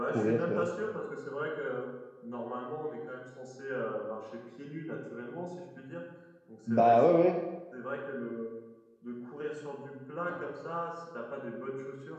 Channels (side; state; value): both; identical; correlation 1.00